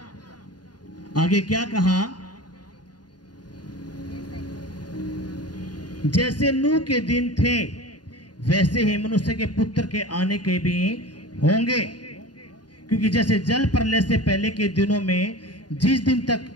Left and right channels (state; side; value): late; right; 0.70 ms